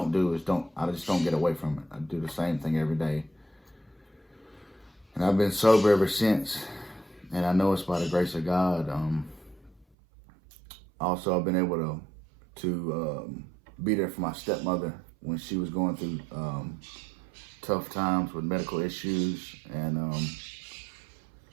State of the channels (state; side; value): drops out; left; at 9.9 s